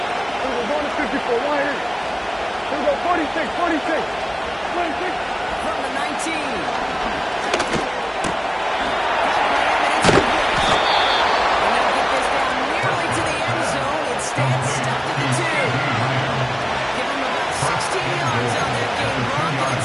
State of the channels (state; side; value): identical; both; correlation 1.00